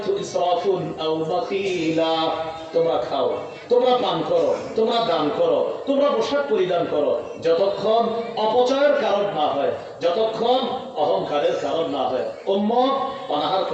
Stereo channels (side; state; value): both; identical; correlation 1.00